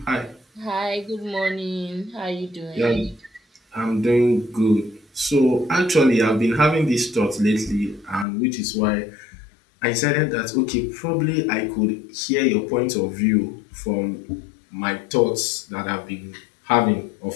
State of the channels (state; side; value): drops out; right; at 8.2 s